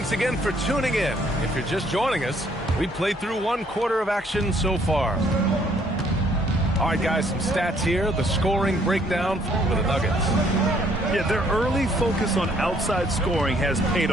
again for tuning in. If you're just joining us, we played through 1 quarter of action so far. All right, guys, some stats here. The scoring breakdown for the Nuggets. Yeah, their early focus on outside scoring has paid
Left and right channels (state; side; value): normal; both; correlation 0.65